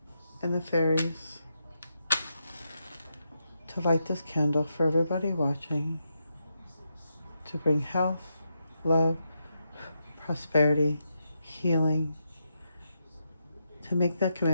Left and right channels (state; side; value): inverted; both; correlation -0.84